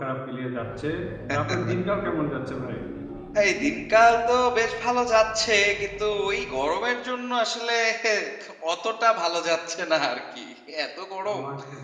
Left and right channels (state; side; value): identical; both; correlation 1.00